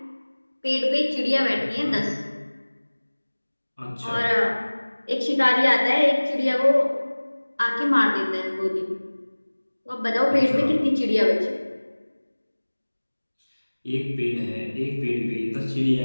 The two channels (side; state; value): both; inverted; correlation -1.00